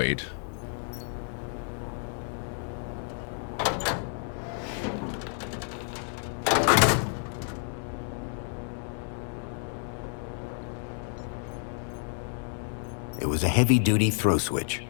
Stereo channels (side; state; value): right; silent; 58 dB below the other